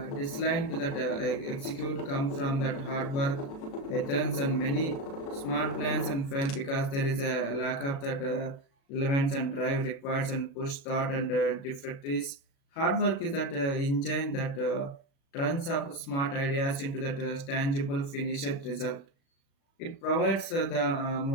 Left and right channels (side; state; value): right; late; 36 ms